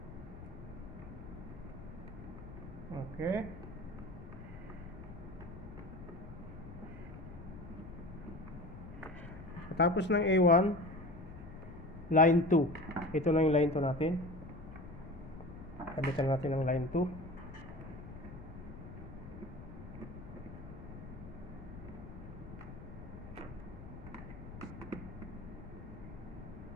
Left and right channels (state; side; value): noise; left; rumble, 13 dB below the sound